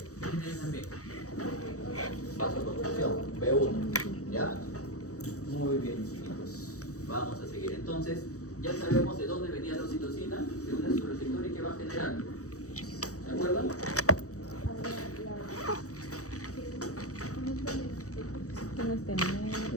tiene ahí también? Vasoconstricción, B1, ¿ya? Muy bien, chicos. Vamos a seguir. Entonces, ya sabemos de dónde venía la oxitocina, de un su receptor y qué va a generar. ¿Se acuerdan?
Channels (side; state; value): right; late; 0.66 ms